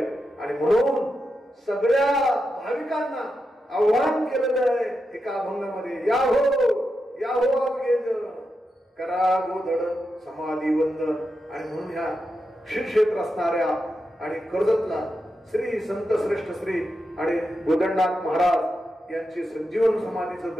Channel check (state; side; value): normal; both; correlation 0.87